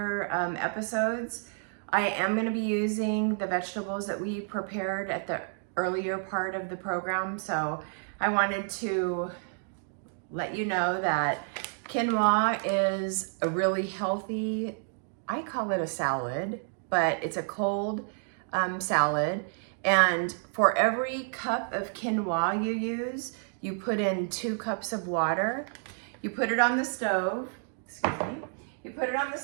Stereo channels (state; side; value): silent; left; 56 dB below the other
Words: episodes, I am going to be using the vegetables that we prepared at the earlier part of the program. So I wanted to let you know that quinoa is a really healthy, I call it a salad, but it's a cold salad. And for every cup of quinoa you use, you put in 2 cups of water. You put it on the stove, excuse me. You put it on the